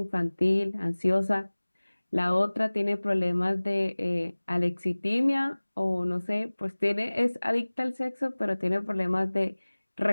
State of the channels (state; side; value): inverted; both; correlation -1.00